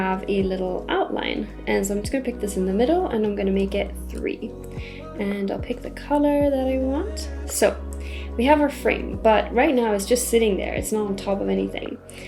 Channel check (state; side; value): identical; both; correlation 1.00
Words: a little outline. And so I'm just going to pick this in the middle and I'm going to make it 3. And I'll pick the color that I want. So we have our frame, but right now it's just sitting there. It's not on top of anything.